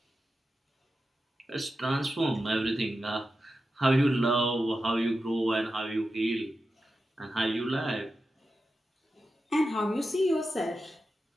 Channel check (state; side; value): normal; both; correlation 0.91